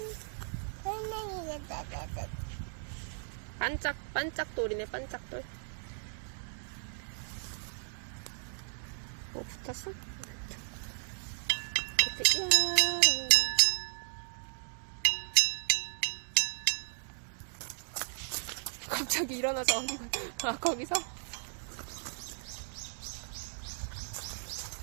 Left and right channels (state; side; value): silent; left; digital silence